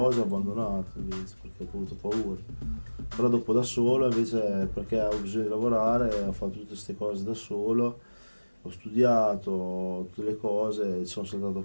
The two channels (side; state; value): both; inverted; correlation -1.00